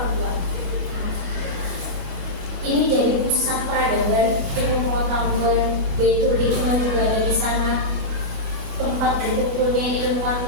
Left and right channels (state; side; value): late; left; 28 ms